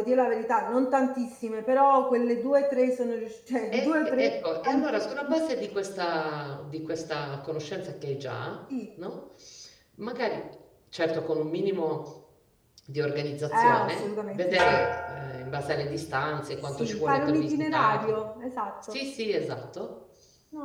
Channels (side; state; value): both; identical; correlation 1.00